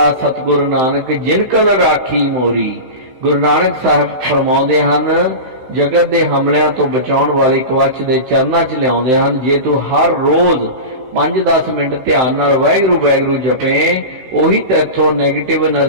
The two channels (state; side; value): late; left; 16 ms